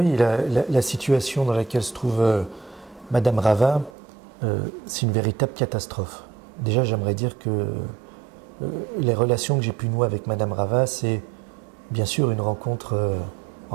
la situation dans laquelle se trouve Madame Rava, c'est une véritable catastrophe. Déjà, j'aimerais dire que les relations que j'ai pu nouer avec Madame Rava, c'est bien sûr une rencontre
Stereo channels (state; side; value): drops out; left; at 3.9 s